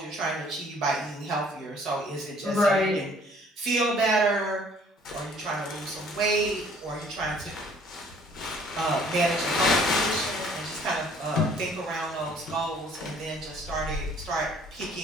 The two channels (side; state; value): both; normal; correlation 0.57